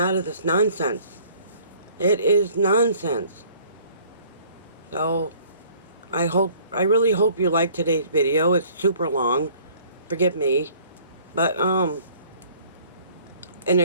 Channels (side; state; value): both; inverted; correlation -0.54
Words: of this nonsense. It is nonsense. So, I really hope you liked today's video. It's super long. Forgive me. But, and